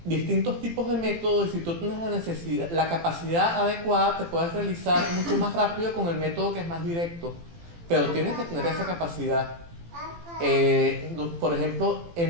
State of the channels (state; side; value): late; left; 18 ms